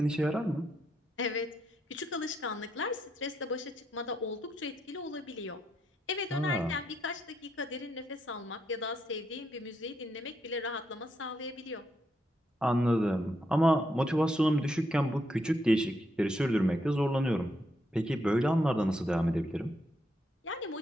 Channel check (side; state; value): both; normal; correlation 0.78